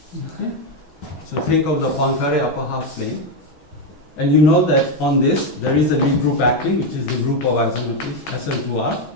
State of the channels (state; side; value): late; right; 6.2 ms